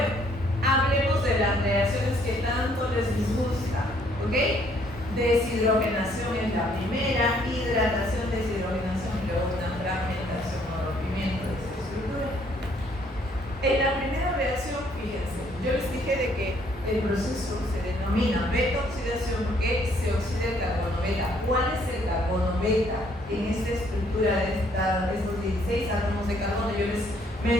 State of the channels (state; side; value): normal; both; correlation 0.66